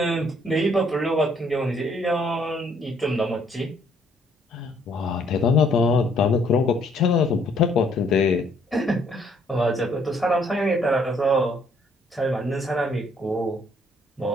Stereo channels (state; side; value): normal; both; correlation 0.66